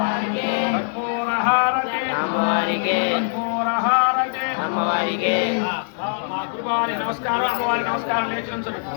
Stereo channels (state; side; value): silent; right; 64 dB below the other